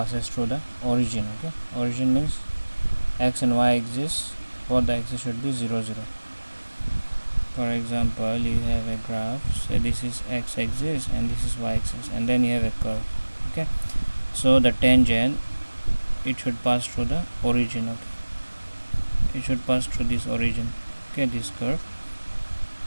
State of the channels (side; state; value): both; inverted; correlation -1.00